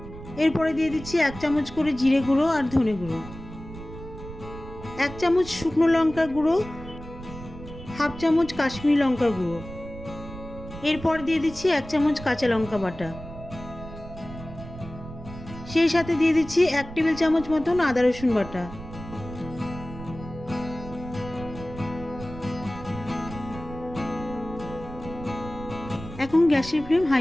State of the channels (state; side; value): noise; right; rumble, 13 dB below the sound